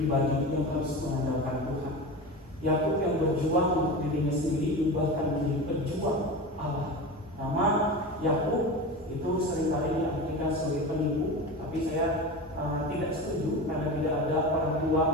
yang harus mengandalkan Tuhan. Yakub yang berjuang untuk dirinya sendiri diubahkan menjadi pejuang Allah. Nama Yakub itu seringkali diartikan sebagai penipu, tapi saya tidak setuju karena tidak ada orang tua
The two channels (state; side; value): normal; both; correlation 0.27